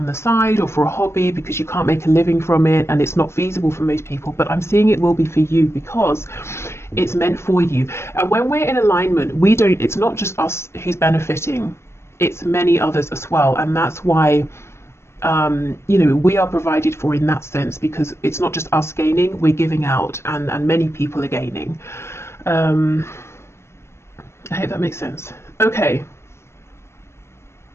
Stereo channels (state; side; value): late; right; 0.13 ms